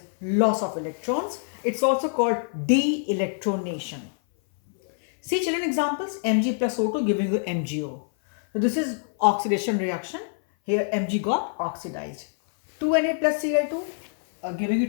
loss of electrons. It's also called de-electronation. See children, examples: Mg plus O2 giving you MgO. So this is oxidation reaction. Here Mg got oxidized. 2Na plus Cl2 giving you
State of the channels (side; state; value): right; silent; 58 dB below the other